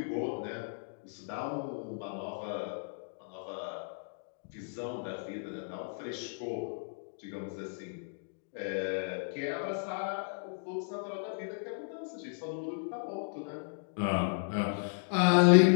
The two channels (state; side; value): silent; right; digital silence